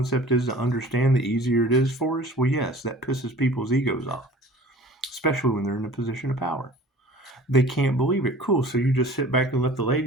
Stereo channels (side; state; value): both; normal; correlation 0.45